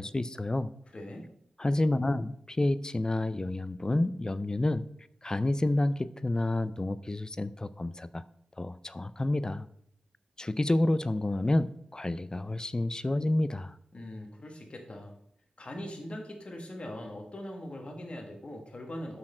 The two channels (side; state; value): both; normal; correlation 0.98